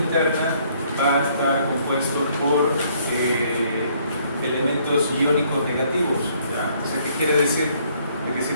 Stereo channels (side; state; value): both; inverted; correlation -0.65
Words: va a estar compuesto por elementos iónicos negativos. ¿Ya? O sea, ¿qué quiere decir? De que